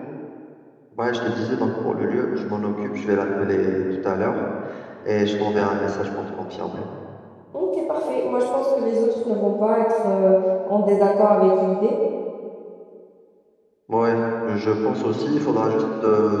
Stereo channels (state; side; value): identical; both; correlation 1.00